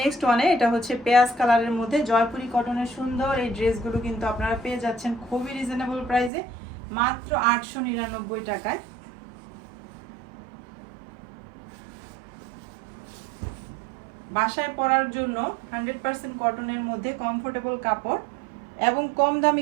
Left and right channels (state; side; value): drops out; left; at 6.3 s